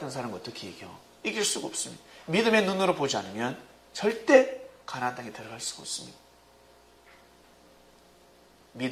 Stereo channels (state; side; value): identical; both; correlation 1.00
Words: 사람은 어떻게 이겨? 이길 수가 없습니다. 믿음의 눈으로 보지 않으면 절대 가나안 땅에 들어갈 수가 없습니다.